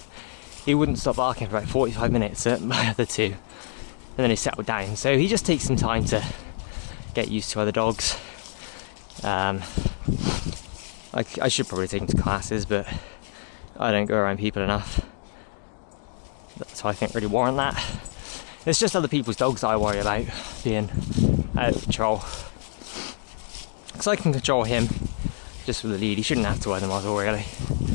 he wouldn't stop barking for about 45 minutes at my other two. And then he settled down. So he just takes some time to get used to other dogs. I should probably take him to classes, but I don't go around people enough. So I think really warrant that. It's just other people's dogs that I worry about being out of control. Because I can control him just with the lead. He shouldn't have to wear the muzzle really.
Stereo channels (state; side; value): silent; right; digital silence